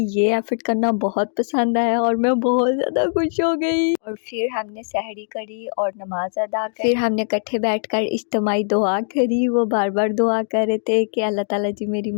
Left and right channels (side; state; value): right; silent; digital silence